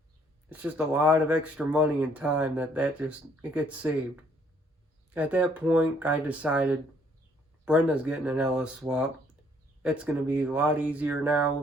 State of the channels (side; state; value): both; normal; correlation 0.65